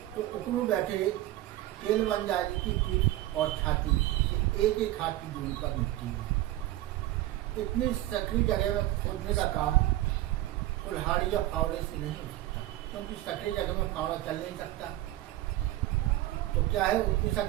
तो उखरू बैठे तेल बन जाने की पीठ और छाती से एक एक हाथ की दूरी पर मिट्टी है। इतनी सकरी जगह में खोदने का काम कुल्हाड़ी या फावड़े से नहीं हो सकता, क्योंकि सकरी जगह में फावड़ा चल नहीं सकता। तो क्या है, उतनी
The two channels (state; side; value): quieter; left; 15.5 dB